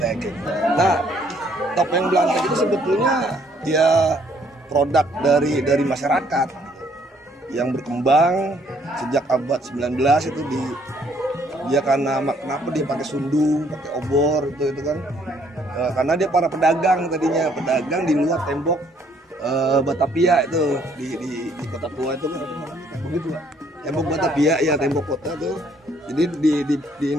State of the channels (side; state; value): both; normal; correlation 0.65